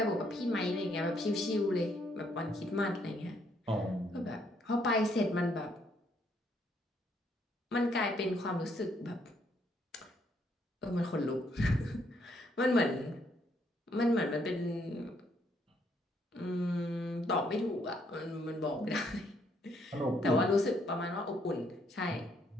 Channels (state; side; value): normal; both; correlation 0.71